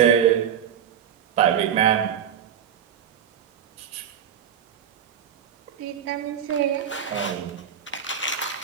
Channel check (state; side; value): quieter; left; 8.8 dB